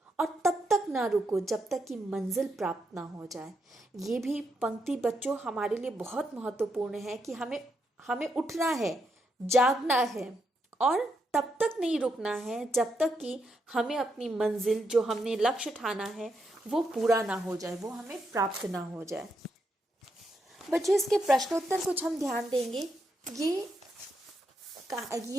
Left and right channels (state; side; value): normal; both; correlation 0.81